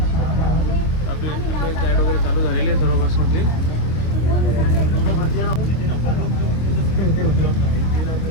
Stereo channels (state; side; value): late; right; 25 ms